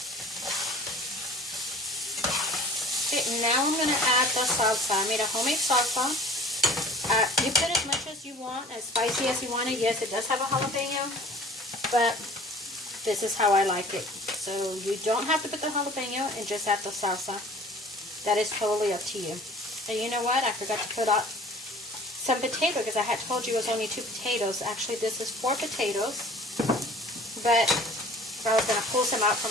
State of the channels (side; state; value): both; normal; correlation 0.47